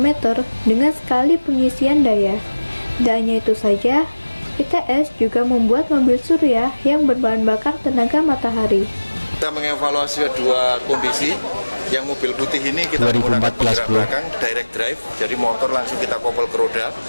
dengan sekali pengisian daya. Tidak hanya itu saja, ITS juga membuat mobil surya yang berbahan bakar tenaga matahari. Kita mengevaluasi dua kondisi. Yang mobil putih ini kita menggunakan penggerak belakang direct drive, jadi motor langsung kita kopel ke roda.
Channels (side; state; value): both; inverted; correlation -1.00